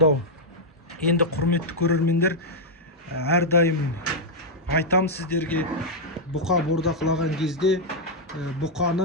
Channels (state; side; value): normal; both; correlation -0.04